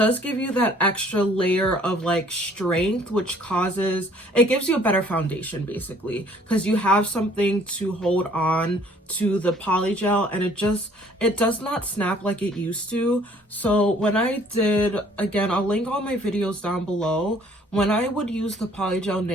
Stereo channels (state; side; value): normal; both; correlation 0.58